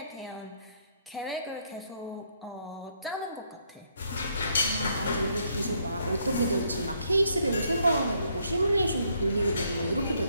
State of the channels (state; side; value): inverted; both; correlation -0.71